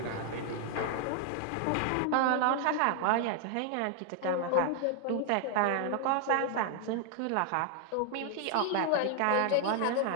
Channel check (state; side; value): different; both; correlation 0.00